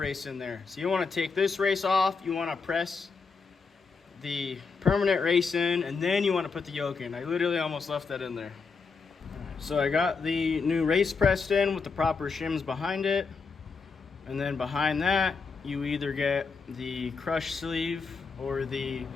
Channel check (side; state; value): right; quieter; 4.9 dB